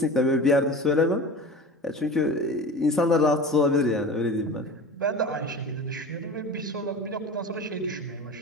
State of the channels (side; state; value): both; normal; correlation 0.34